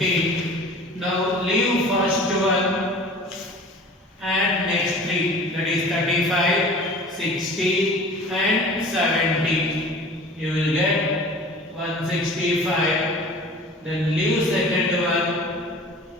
Now leave first one, add next 3, that is 35, 60 and 70. You will get 165. Then leave second one,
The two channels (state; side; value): normal; both; correlation 0.42